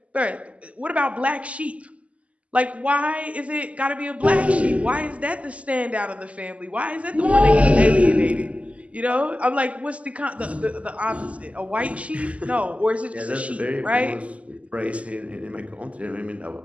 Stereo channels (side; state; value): left; late; 0.065 ms